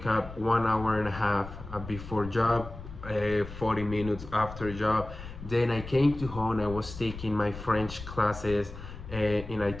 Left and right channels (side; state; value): left; noise; rumble, 12 dB below the sound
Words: up 1 hour and a half before job, 40 minutes after job. Then I came to home. I was taking my French classes in